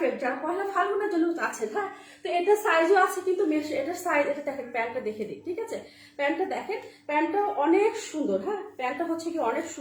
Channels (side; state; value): both; identical; correlation 1.00